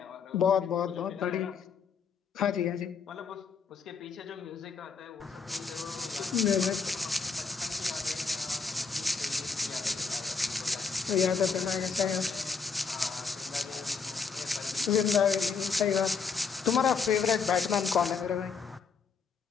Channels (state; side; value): quieter; right; 5.4 dB